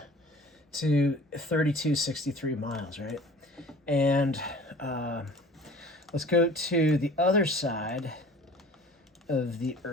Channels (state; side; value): normal; both; correlation 0.46